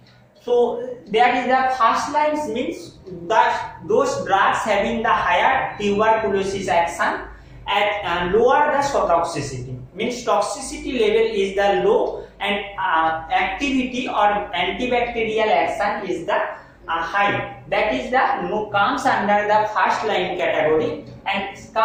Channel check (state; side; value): identical; both; correlation 1.00